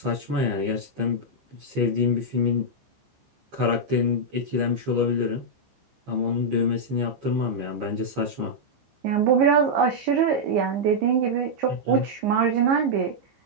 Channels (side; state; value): left; late; 15 ms